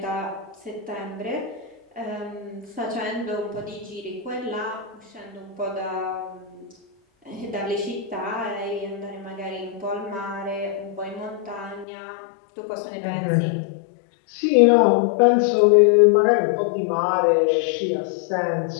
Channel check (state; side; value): drops out; right; at 11.9 s